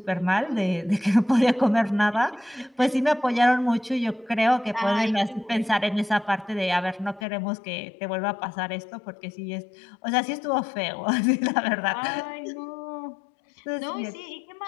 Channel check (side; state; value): right; drops out; at 7.2 s